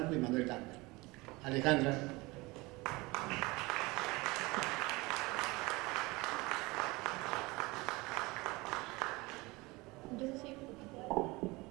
y Manuel Campos. Alejandra.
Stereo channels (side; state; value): left; quieter; 23.0 dB